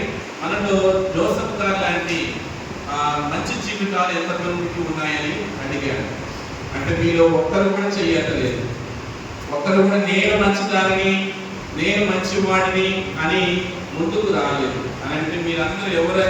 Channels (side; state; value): both; identical; correlation 1.00